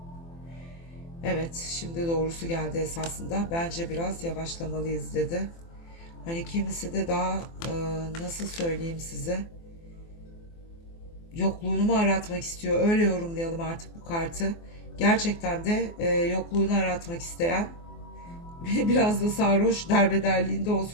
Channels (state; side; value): late; right; 24 ms